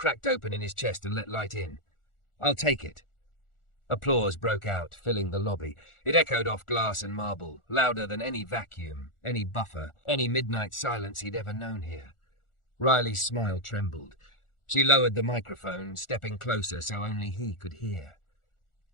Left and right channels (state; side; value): late; right; 1.4 ms